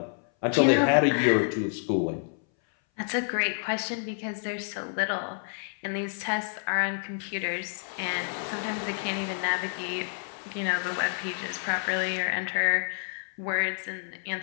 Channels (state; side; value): silent; right; 58 dB below the other